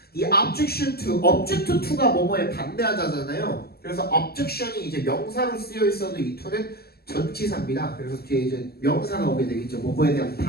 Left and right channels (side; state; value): right; late; 0.46 ms